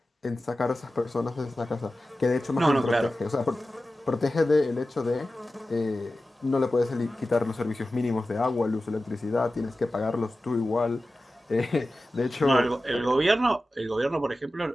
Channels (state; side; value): normal; both; correlation 0.94